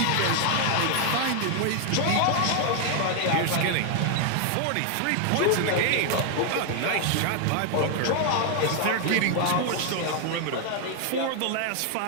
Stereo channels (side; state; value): both; different; correlation 0.00